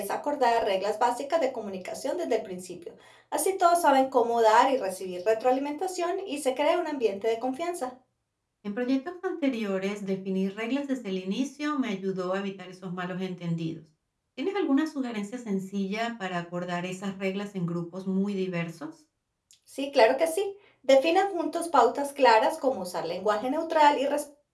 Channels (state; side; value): identical; both; correlation 1.00